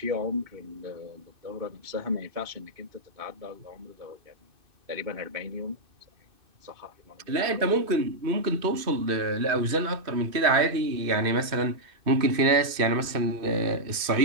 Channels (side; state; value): left; late; 2.6 ms